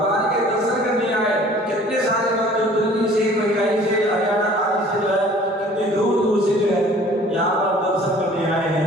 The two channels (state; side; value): normal; both; correlation 0.51